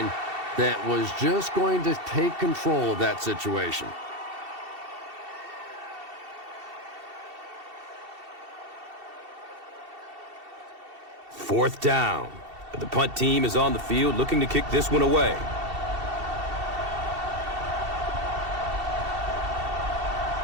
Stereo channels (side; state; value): left; late; 2.7 ms